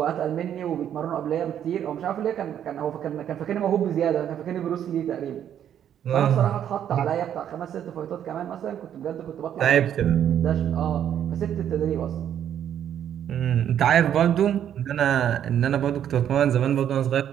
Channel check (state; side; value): quieter; left; 9.9 dB